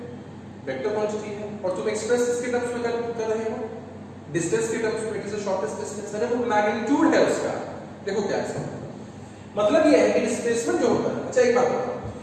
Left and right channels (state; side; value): identical; both; correlation 1.00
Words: क्वांटिटी है और तुम एक्सप्रेस इसके टर्म्स में कर रहे हो, डिस्टेंस के टर्म्स में। It is the shortest distance, अरे वो मैग्नीट्यूड है उसका। देखो क्या है मतलब ये है कि डिस्प्लेसमेंट जो होता है, अच्छा एक बात बताओ,